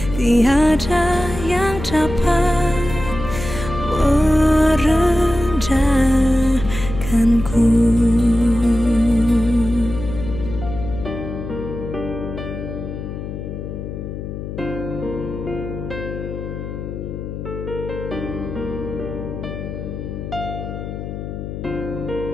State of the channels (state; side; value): noise; left; hum, 7 dB below the sound